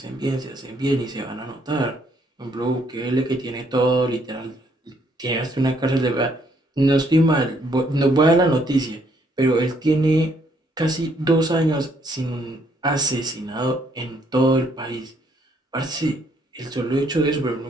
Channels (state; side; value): normal; both; correlation 0.68